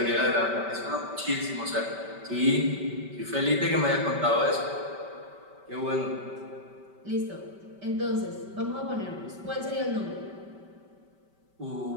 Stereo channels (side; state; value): left; late; 5.2 ms